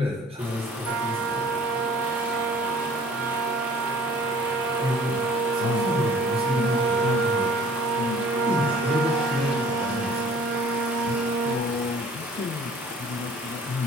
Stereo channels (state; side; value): normal; both; correlation 0.52